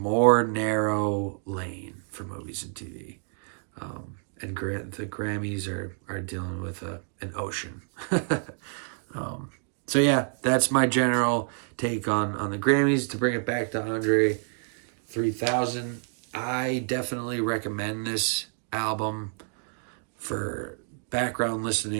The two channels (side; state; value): left; silent; 59 dB below the other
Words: narrow lane for movies and TV. And the Grammys are dealing with an ocean. So yeah, that's my general take on the Grammys. To bring it back to Andre 3000, I definitely recommend this album for background